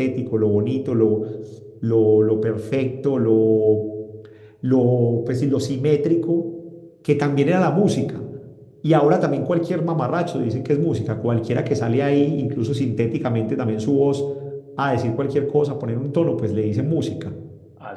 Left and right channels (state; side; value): identical; both; correlation 1.00